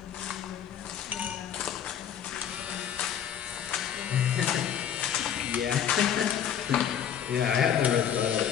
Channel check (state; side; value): quieter; right; 9.1 dB